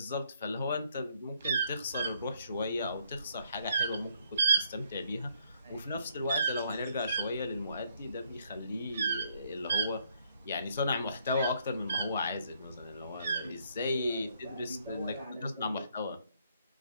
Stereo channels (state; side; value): inverted; both; correlation -0.70